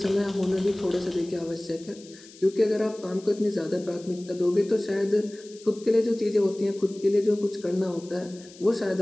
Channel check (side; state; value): left; noise; hiss, 21 dB below the sound